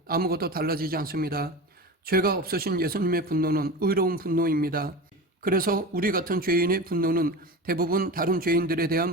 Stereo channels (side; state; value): both; normal; correlation 0.28